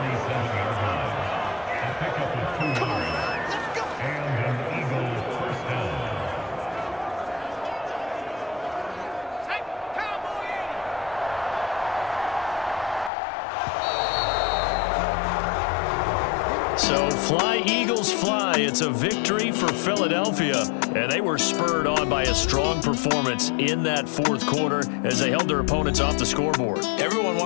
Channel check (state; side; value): drops out; right; at 13.1 s